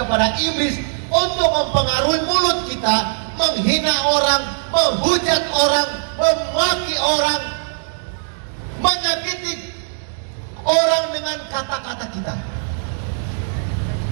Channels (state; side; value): silent; left; digital silence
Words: iblis untuk mempengaruhi mulut kita, menghina orang, menghujat orang, memaki orang, menyakiti orang dengan kata-kata kita.